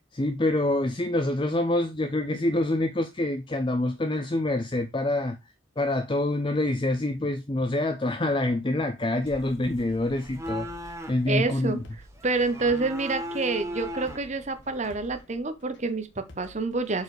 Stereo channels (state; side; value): normal; both; correlation 0.59